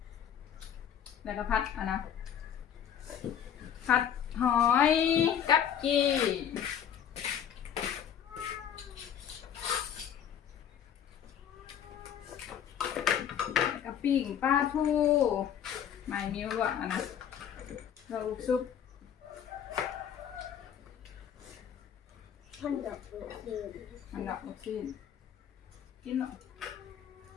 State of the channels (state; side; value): quieter; right; 9.1 dB